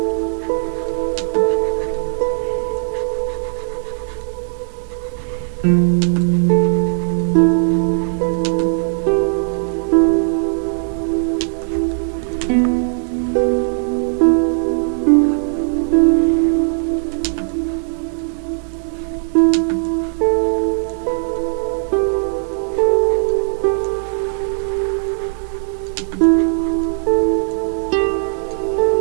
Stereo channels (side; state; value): left; silent; digital silence